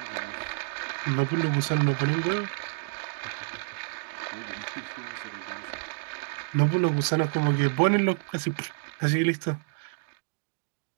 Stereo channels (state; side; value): silent; left; digital silence